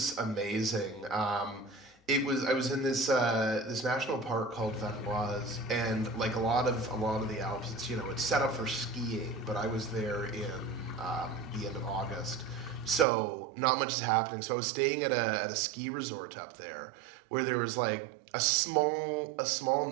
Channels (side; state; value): left; drops out; at 13.1 s